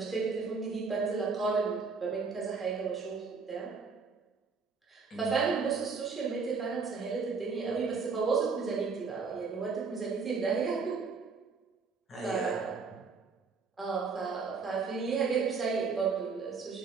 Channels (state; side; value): quieter; left; 4.9 dB